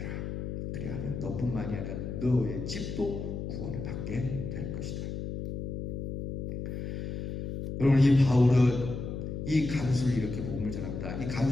그리하면 너뿐만이 아니라 너의 집도 구원을 받게 될 것이다. 여러분, 이 바울은 이 간수를 이렇게 복음을 전합니다. 이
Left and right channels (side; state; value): left; noise; hum, 5 dB below the sound